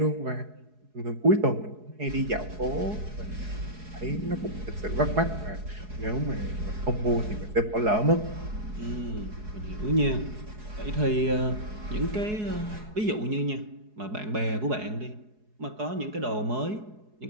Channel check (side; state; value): left; late; 4.7 ms